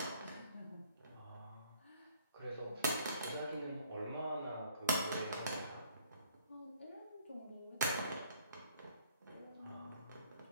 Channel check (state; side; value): inverted; both; correlation -0.60